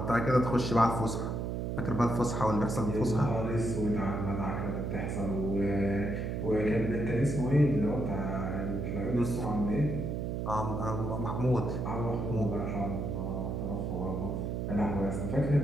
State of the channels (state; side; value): noise; right; hum, 2 dB below the sound